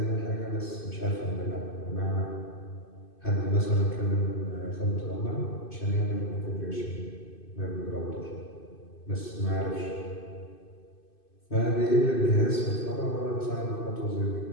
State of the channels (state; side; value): late; right; 2.5 ms